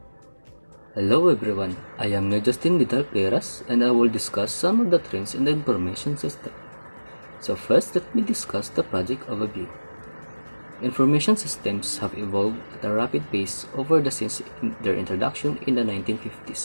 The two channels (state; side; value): inverted; both; correlation -1.00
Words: Hello everyone, I am Justin Vidal Peras and I will discuss some of the trends in the information system. So first, let me discuss the project overview. Information systems have evolved at a rapid pace since their introduction in the